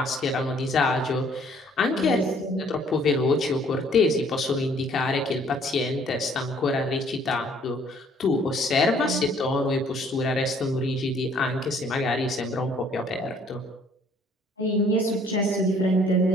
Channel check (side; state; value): both; normal; correlation 0.60